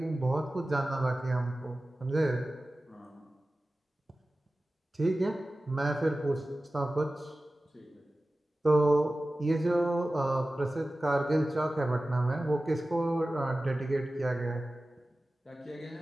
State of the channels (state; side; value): normal; both; correlation 0.96